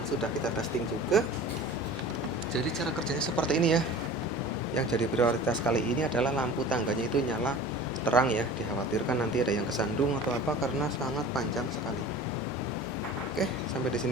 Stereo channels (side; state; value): both; normal; correlation 0.40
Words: sudah kita testing juga. Jadi cara kerjanya seperti ini ya. Yang jadi prioritas kali ini adalah lampu tangganya itu nyala terang ya. Dikhawatirkan nanti ada yang kesandung atau apa karena sangat panjang sekali. Oke, sampai di